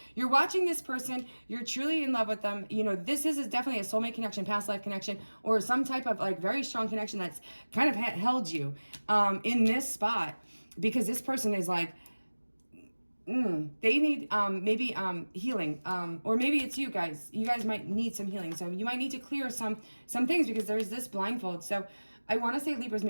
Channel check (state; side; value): inverted; both; correlation -1.00